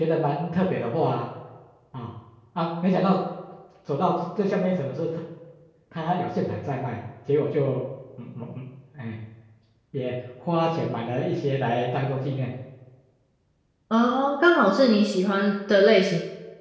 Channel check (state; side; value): identical; both; correlation 1.00